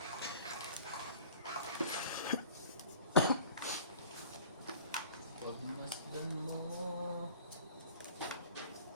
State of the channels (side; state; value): both; inverted; correlation -0.46